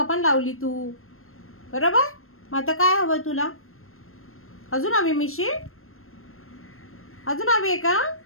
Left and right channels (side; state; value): right; late; 0.62 ms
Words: पण लावली तू, बरोबर? मग आता काय हवं तुला? अजून हवी मिशी? अजून हवी आहे का?